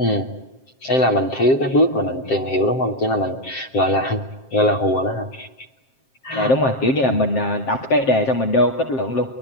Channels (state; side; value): late; right; 7.6 ms